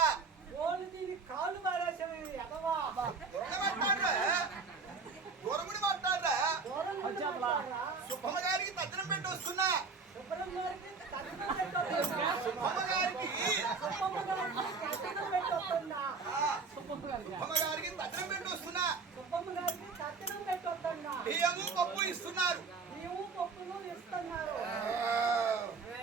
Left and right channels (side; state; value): left; quieter; 4.6 dB